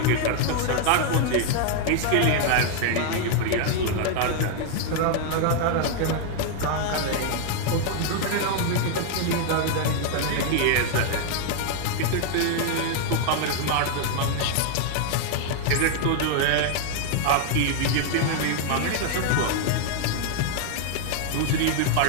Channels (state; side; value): different; both; correlation 0.00